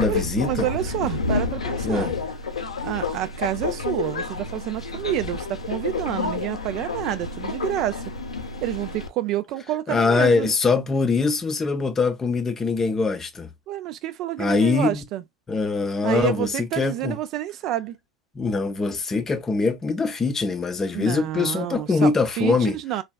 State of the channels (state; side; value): normal; both; correlation 0.49